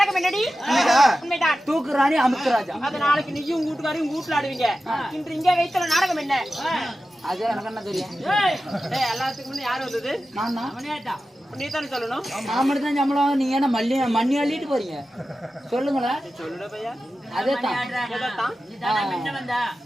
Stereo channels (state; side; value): normal; both; correlation 0.93